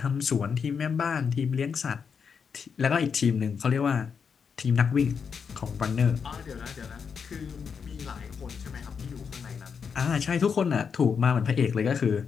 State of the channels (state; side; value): quieter; right; 6.3 dB